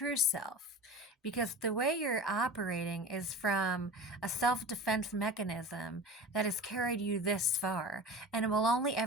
self. Because the way you're operating is from a self defense mechanism that has carried you this far. And it will only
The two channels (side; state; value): both; normal; correlation 0.33